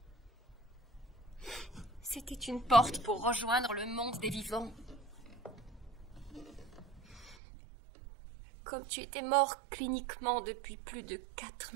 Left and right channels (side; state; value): left; drops out; at 7.4 s